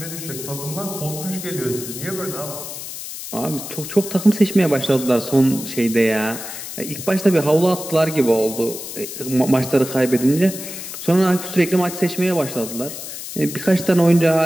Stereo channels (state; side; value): noise; left; hiss, 9 dB below the sound